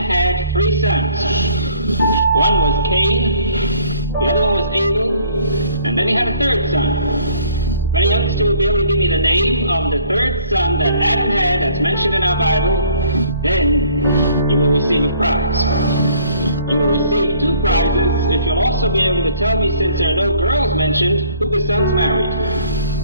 3 sons. One was Cain, the other one was Abel, and then he had a 3rd son. If any youngster will be able to give me the name of the 3rd son that Adam had that's mentioned in our Bible, then you will receive a prize. You will receive 2 prizes if you'll also be able to tell me, since there are no girls mentioned, who the sons married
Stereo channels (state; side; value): inverted; both; correlation -0.58